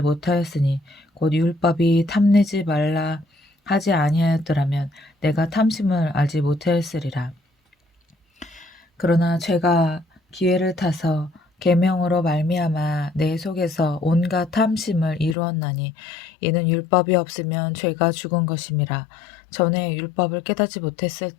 못하였으니 곧 율법이 탐내지 말라 하지 아니하였더라면 내가 탐심을 알지 못하였으리라. 그러나 죄가 기회를 타서 계명으로 말미암아 내 속에서 온갖 탐심을 이루었나니 이는 율법이 없으면 죄가 죽은 것임이라. 전에 율법을 깨닫지 못했을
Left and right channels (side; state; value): right; drops out; at 15.4 s